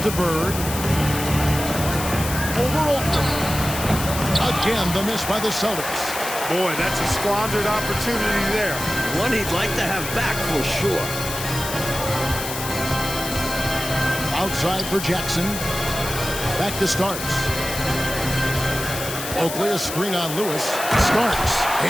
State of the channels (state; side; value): noise; left; hiss, 7 dB below the sound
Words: to Bird. Over Oakland. Again, the miss by the Celtics. Boy, that's a squandered opportunity there. One he'd like to have back for sure. Outside for Jackson. Back to Starks. Oakley, a screen on Lewis. Starks.